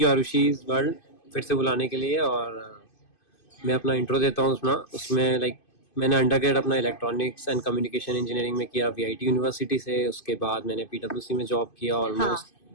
यू आरुषि's वर्ल्ड फिर से बुलाने के लिए। और मैं अपना इंट्रो देता हूँ उसमें मैंने अंडरग्रेड अपना इलेक्ट्रॉनिक्स एंड कम्युनिकेशन इंजीनियरिंग में किया वीआईटी यूनिवर्सिटी से। उसके बाद मैंने पीडब्ल्यूसी में जॉब किया, ऑलमोस्ट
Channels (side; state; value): right; late; 2.5 ms